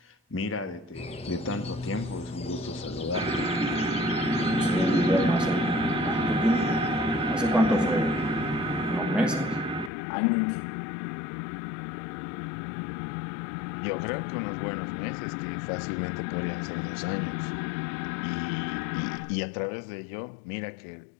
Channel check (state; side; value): drops out; right; at 9.9 s